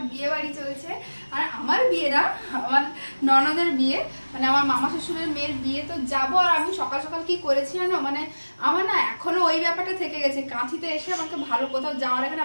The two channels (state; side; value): inverted; both; correlation -1.00